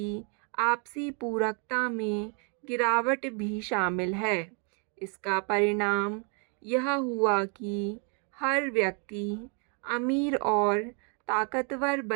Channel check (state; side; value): quieter; left; 38.8 dB